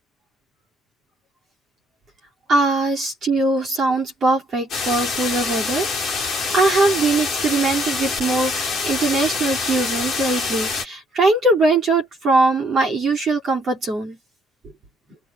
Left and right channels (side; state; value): both; normal; correlation 0.67